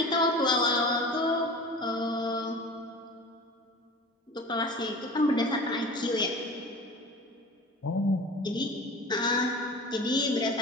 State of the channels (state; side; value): normal; both; correlation 0.37